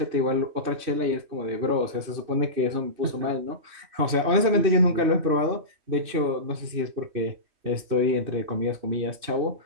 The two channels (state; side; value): late; left; 3.1 ms